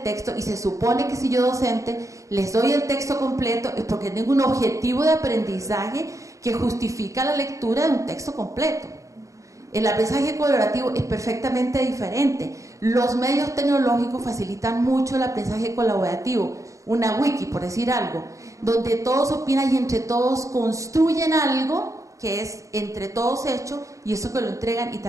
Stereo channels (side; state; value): left; late; 0.15 ms